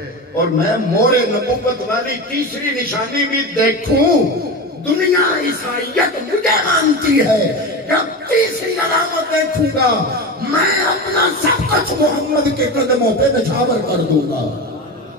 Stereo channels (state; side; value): normal; both; correlation 0.24